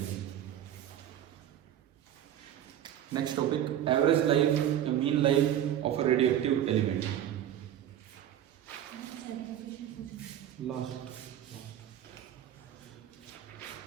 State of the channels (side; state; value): left; quieter; 11.1 dB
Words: Next topic, average life या mean life of a radioactive element. Last